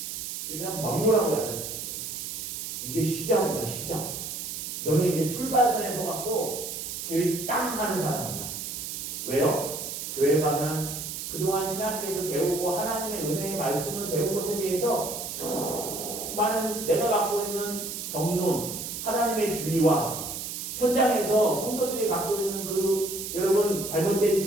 그냥 막무라고 야단쳤어요. 이게 시작이다 시작. 너는 이제 출발선에 서갖고 제일 땅 하는 사람이다. 왜요? 교회 가면 그동안 신학교에서 배우고 하나님의 은혜의 말씀을 배운 것에 대해서 수많은 내가 갖고 있는 정론, 하나님의 진리와 현장에서 성도들이 갖고 있는 그 여러분 잘못된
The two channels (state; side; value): noise; right; hiss, 6 dB below the sound